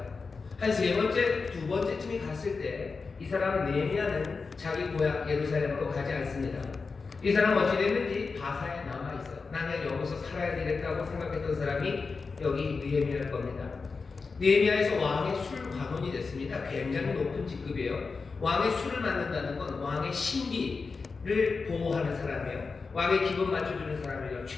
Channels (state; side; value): quieter; right; 4.6 dB